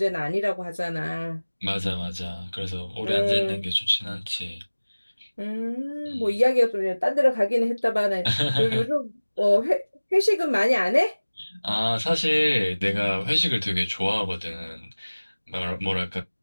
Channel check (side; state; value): both; inverted; correlation -1.00